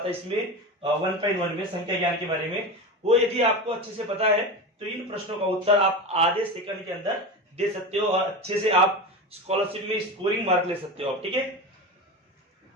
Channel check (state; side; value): normal; both; correlation 0.24